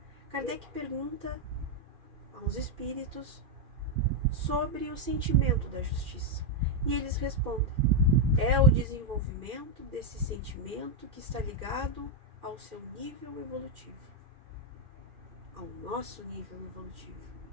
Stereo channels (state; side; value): late; left; 2.4 ms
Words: Kardec pergunta aos espíritos sobre o sentimento da justiça. E eles respondem: é o desenvolvimento desse sentimento que está ligado ao seu nível evolutivo, ao nosso nível evolutivo,